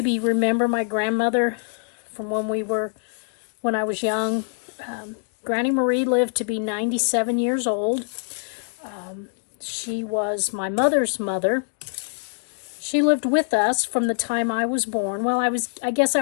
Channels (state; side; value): silent; right; digital silence